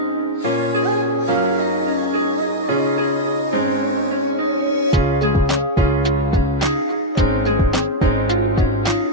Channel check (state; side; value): normal; both; correlation -0.03